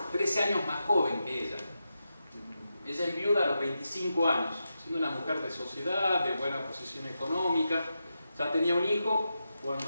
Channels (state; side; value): inverted; both; correlation -0.88